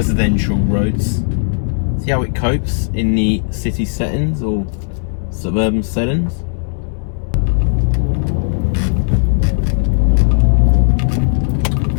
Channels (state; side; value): silent; right; digital silence